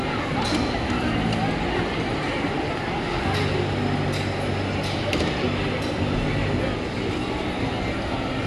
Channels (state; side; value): identical; both; correlation 1.00